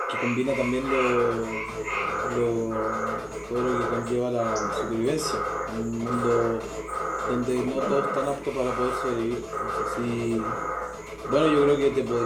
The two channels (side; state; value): both; identical; correlation 1.00